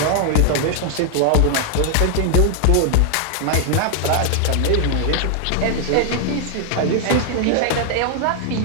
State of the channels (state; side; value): different; both; correlation 0.00